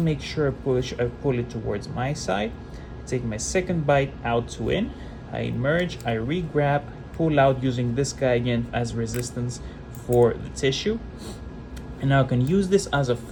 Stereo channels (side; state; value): both; identical; correlation 1.00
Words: make sure I pull it towards my side. I take my second bite out to in. I emerge, I re-grab, pull out using this guy again as resistance for the tissue. And now I can use this as a